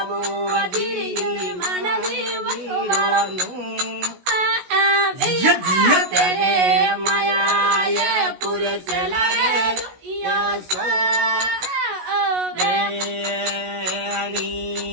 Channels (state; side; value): late; left; 16 ms